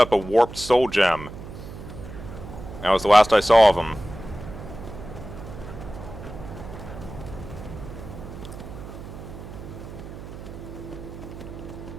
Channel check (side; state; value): right; noise; hum, 12 dB below the sound